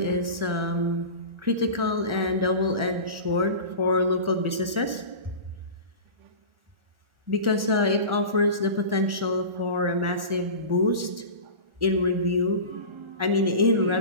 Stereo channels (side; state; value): left; late; 1.4 ms